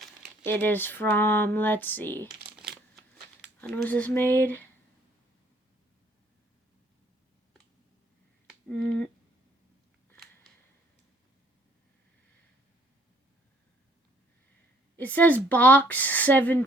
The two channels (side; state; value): both; normal; correlation 0.62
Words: It is from, let's see. When was this made? It says box